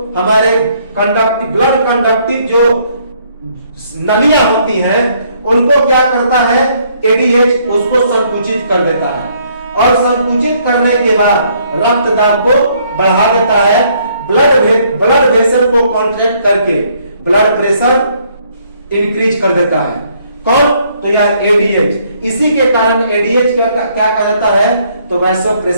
हमारे कंडक्टिव ब्लड कंडक्टिव जो नलियां होती हैं उनको क्या करता है एडीएच, उसको संकुचित कर देता है, और संकुचित करने के बाद रक्त दाब को बढ़ा देता है, ब्लड वेसल को कॉन्ट्रैक्ट करके ब्लड प्रेशर इंक्रीज कर देता है। कौन, तो यह एडीएच। इसी के कारण एडीएच क्या कहा जाता है, तो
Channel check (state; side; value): inverted; both; correlation -0.67